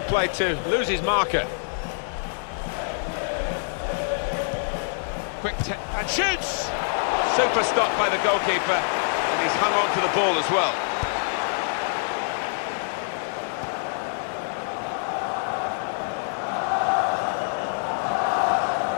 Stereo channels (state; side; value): silent; right; digital silence